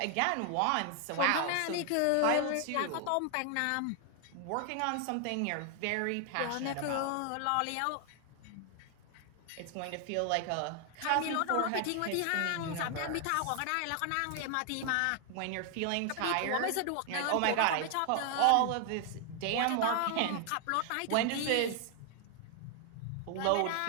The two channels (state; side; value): different; both; correlation 0.00